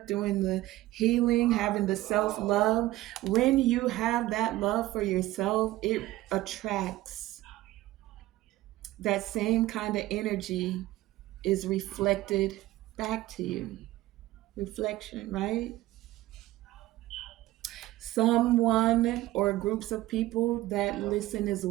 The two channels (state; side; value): quieter; left; 16.7 dB